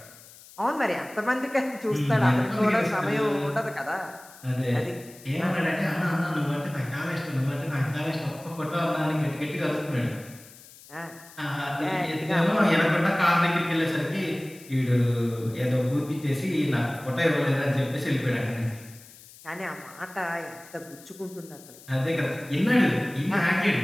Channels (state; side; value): noise; left; hiss, 21 dB below the sound